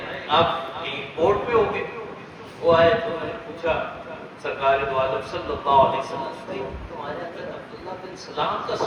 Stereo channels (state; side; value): identical; both; correlation 1.00